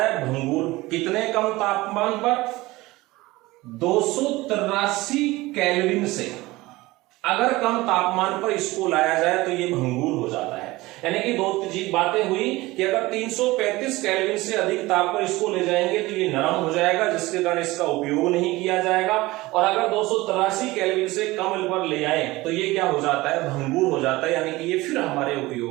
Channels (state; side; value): quieter; left; 19.9 dB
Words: है? भंगुर। कितने कम तापमान पर? 283 केल्विन से अगर कम तापमान पर इसको लाया जाए तो ये भंगुर हो जाता है। यानी कि दो बातें हुई कि अगर 335 केल्विन से अधिक ताप पर इसको ले जाएंगे तो ये नरम हो जाएगा, जिसके कारण इसका उपयोग नहीं किया जाएगा। और अगर 283 केल्विन से कम पर ले आए तो ये क्या हो जाता है? भंगुर हो जाता है। यानी कि ये फिर हमारे